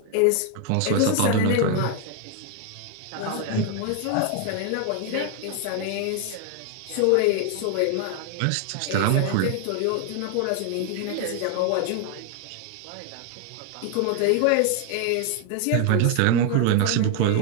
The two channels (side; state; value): both; different; correlation 0.00